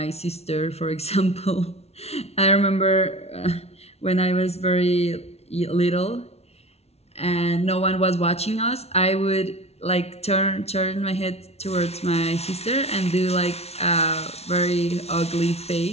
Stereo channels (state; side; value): late; right; 0.31 ms